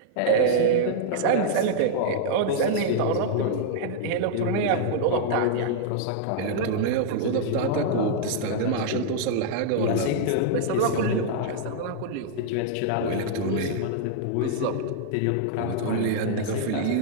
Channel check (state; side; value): different; both; correlation -0.01